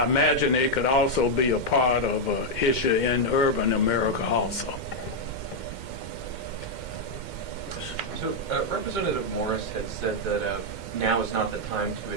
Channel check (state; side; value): late; right; 2.1 ms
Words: imagine it could also be a part of an issue in urban America also. So Representative Morris had said that now is not the time to